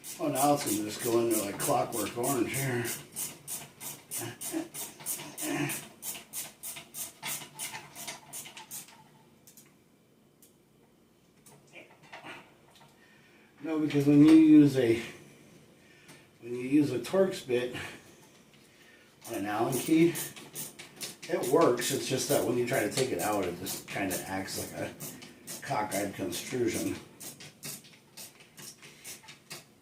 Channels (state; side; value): identical; both; correlation 1.00